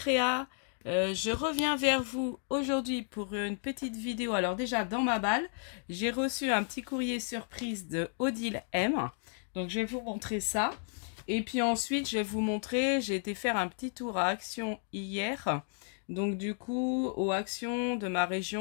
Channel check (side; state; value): right; silent; 56 dB below the other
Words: Je reviens vers vous aujourd'hui pour une petite vidéo. Alors déjà, dans ma balle, j'ai reçu un petit courrier surprise de Odile M. Donc je vais vous montrer ça. Et puis ensuite, je vais vous montrer, j'ai été faire un petit tour à Action hier. Donc du coup, aux Actions de ma